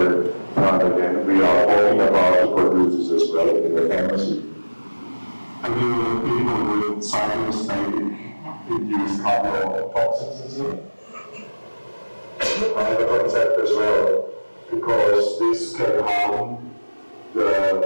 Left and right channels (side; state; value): both; inverted; correlation -1.00